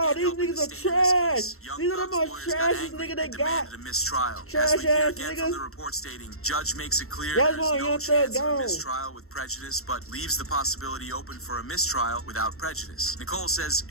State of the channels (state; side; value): late; right; 0.63 ms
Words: again these helping niggas the are state in this case, trash. Young These are the Thug's most lawyers got trashiest angry nigga they and demanded got. a mistrial. As Trash we hear ass again niggas. from the report stating, judge makes it clear That's there's why no Young chance Thug of a gone. mistrial with prejudice, but leaves the possibility open for a mistrial without prejudice. Nicole says